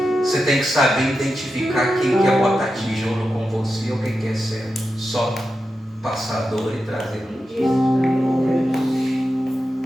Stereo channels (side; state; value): both; normal; correlation 0.90